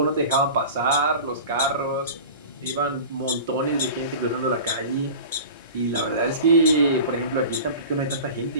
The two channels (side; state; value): both; inverted; correlation -0.36